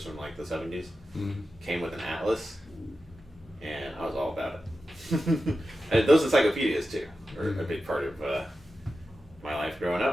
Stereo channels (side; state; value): both; normal; correlation 0.92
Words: from, like, the 70s. Mm-hmm. Came with an atlas, and I was all about it. And those encyclopedias, too, were a big part of my life growing